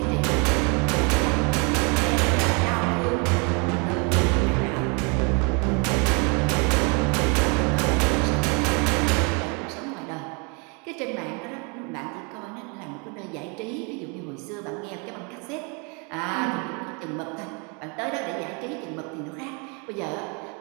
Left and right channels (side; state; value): left; quieter; 33.4 dB